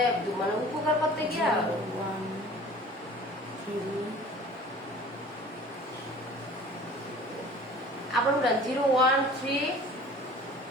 মানে উপকার করতে গিয়া 1 আবার উঠান 013 016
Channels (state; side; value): normal; both; correlation 0.45